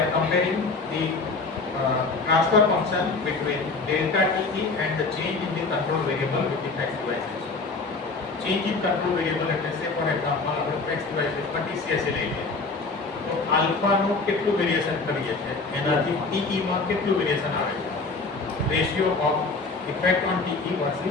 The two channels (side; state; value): right; quieter; 3.9 dB